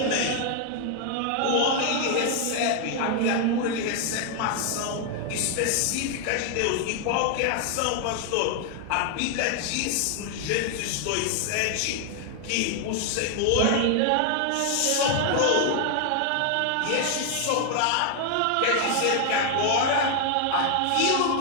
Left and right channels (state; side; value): different; both; correlation 0.00